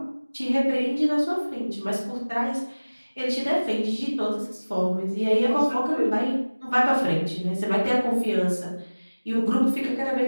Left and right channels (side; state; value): both; inverted; correlation -1.00